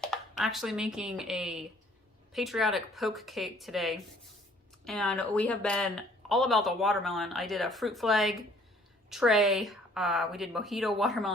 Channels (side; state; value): both; normal; correlation 0.58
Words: I'm actually making a patriotic poke cake today, and we have been all about the watermelon. I did a fruit flag tray. We did mojito